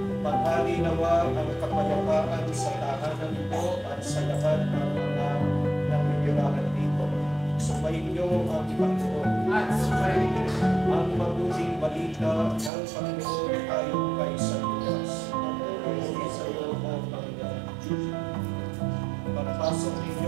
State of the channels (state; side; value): drops out; left; at 12.7 s